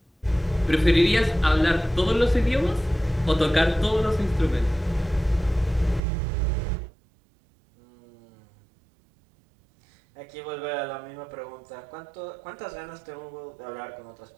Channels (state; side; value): drops out; left; at 6.0 s